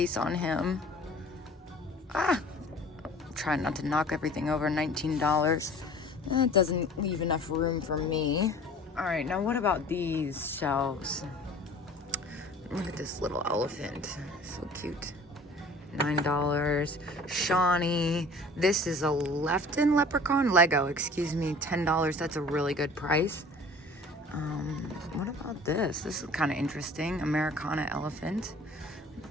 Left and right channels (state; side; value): normal; both; correlation 0.47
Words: on him. I'm trying not to knock everything over. $19. That doesn't leave enough room for me. All right, now what about these shelves? Look at this little elephant, so cute. $9. Shawnee. This is a Lefton leprechaun, Lego, excuse me, $10. That's a really good price. What about this? This is kind of interesting. Americana elephant.